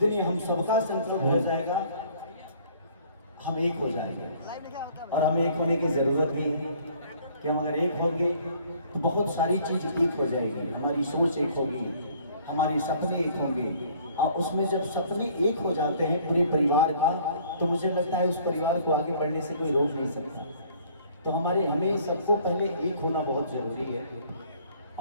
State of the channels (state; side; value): inverted; both; correlation -0.57